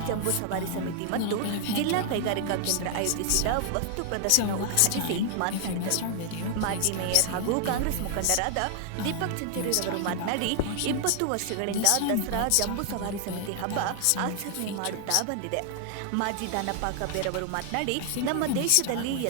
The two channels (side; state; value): both; different; correlation 0.00